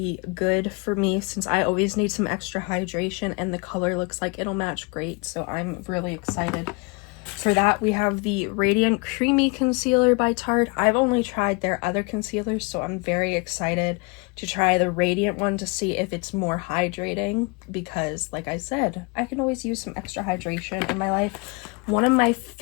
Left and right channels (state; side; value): quieter; right; 30.1 dB